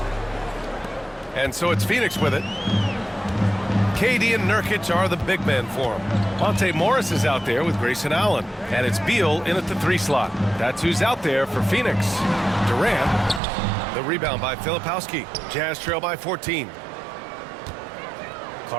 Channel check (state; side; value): drops out; left; at 13.4 s